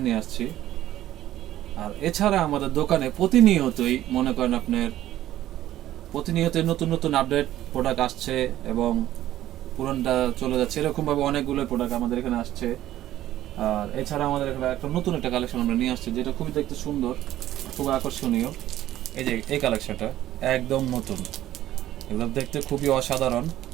নিয়ে আসছি। আর এছাড়া আমাদের দোকানে প্রতিনিয়তই মনে করেন আপনার প্রতিনিয়তই নতুন নতুন আপডেট প্রোডাক্ট আসছে এবং পুরনটা চলে যাচ্ছে, এরকমভাবে অনেকগুলো প্রোডাক্ট আমাদের এখানে আসছে। আর এছাড়া আমাদের এখানে একটা নতুন একটা কালেকশন আমরা নিয়ে আসছি, যেটা খুবই দেখতে সুন্দর, খুব আকর্ষণীয়। এই যে এই কালেকশনটা একদম নতুন, একদম দেখতে খুবই অসাধারণ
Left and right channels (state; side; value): quieter; left; 13.5 dB